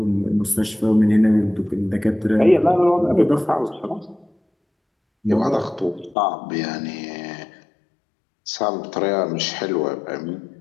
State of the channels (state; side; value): drops out; right; at 6.2 s